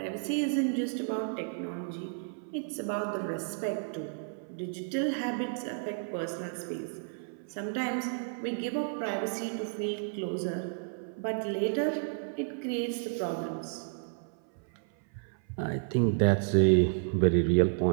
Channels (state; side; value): silent; left; 57 dB below the other